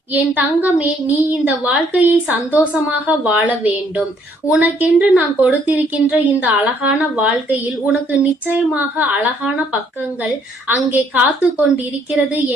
என் தங்கமே, நீ இந்த வாழ்க்கையை சந்தோஷமாக வாழ வேண்டும். உனக்கென்று நான் கொடுத்திருக்கின்ற இந்த அழகான வாழ்க்கையில் உனக்கு நிச்சயமாக அழகான பக்கங்கள் அங்கே காத்து கொண்டிருக்கிறது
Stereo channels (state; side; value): normal; both; correlation 0.66